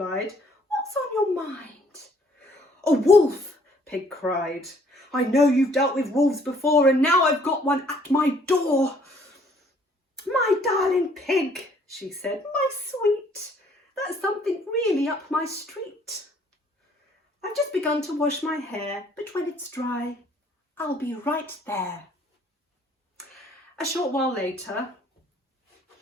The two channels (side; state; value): both; normal; correlation 0.61